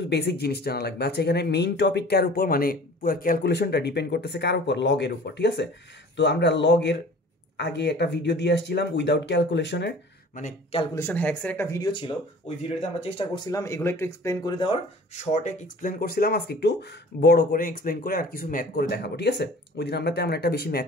বেসিক জিনিস জানা লাগবে। আচ্ছা, এখানে মেইন টপিক কার উপর, মানে পুরো ক্যালকুলেশনটা ডিপেন্ড করতেছে কার উপর, লগের উপর। ঠিক আছে, তো আমরা লগের আগে একটা ভিডিও দিয়ে আসছিলাম উইদাউট ক্যালকুলেশনের, মানে ক্যালকুলেশন হ্যাক্সের একটা ভিডিও ছিল। ওই ভিডিওতে আমরা চেষ্টা করছিলাম এগুলো একটু এক্সপ্লেন করে দেওয়ার, শর্টে এক্সপ্লেন করছিলাম। আজকে একটু বড় করে এক্সপ্লেন করে আর কিছু ম্যাথ করে দেখাবো। ঠিক আছে, ওই দিন আমরা তেমন একটা বেশি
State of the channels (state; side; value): normal; both; correlation 0.46